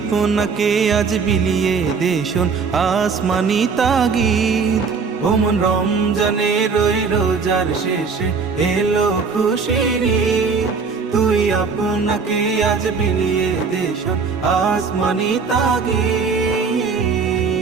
আজ বিলিয়ে দে শোন আসমানি তাগিদ। ওমন রমজানের ওই রোজার শেষে এলো খুশির ঈদ, তুই আপনাকে আজ বিলিয়ে দে শোন আসমানি তাগিদ।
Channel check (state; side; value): quieter; left; 5.2 dB